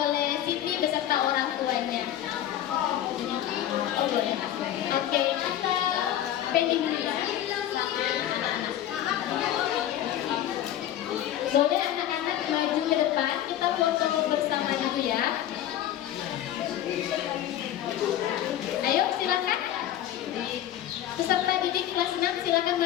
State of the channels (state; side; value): quieter; right; 11.9 dB